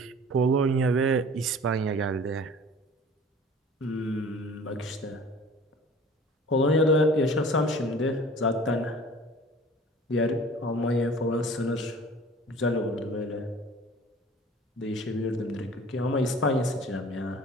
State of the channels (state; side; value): normal; both; correlation 0.45